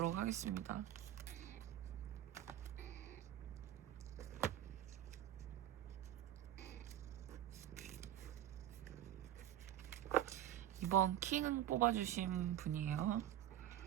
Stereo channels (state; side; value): quieter; left; 11.8 dB